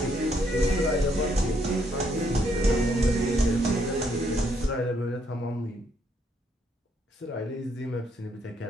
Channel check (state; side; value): normal; both; correlation 0.72